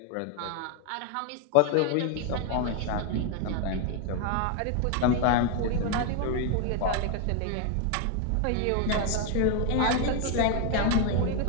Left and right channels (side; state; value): both; different; correlation 0.01